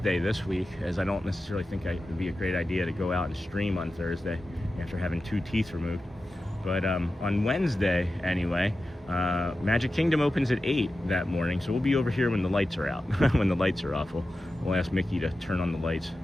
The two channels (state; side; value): normal; both; correlation 0.93